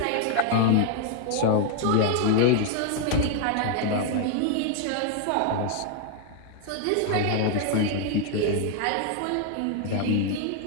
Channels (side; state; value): both; different; correlation 0.00